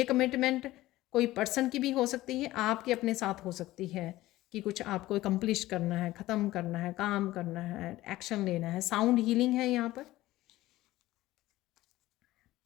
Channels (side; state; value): right; quieter; 16.8 dB